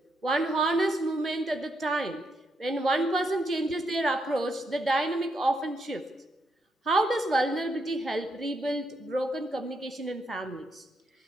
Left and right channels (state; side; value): normal; both; correlation 0.79